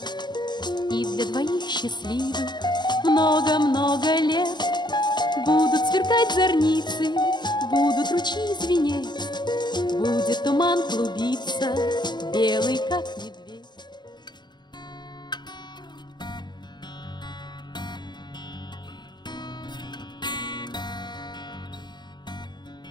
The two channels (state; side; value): late; right; 0.21 ms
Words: И для двоих счастливых много-много лет будут сверкать зорницы, будут ручьи звенеть, будет туман клубиться, белый как